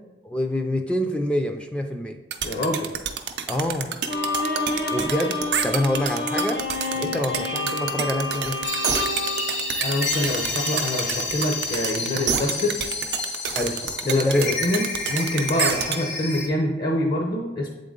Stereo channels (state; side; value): normal; both; correlation 0.42